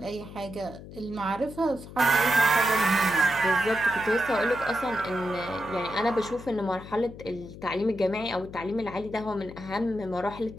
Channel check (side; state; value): left; noise; hum, 14 dB below the sound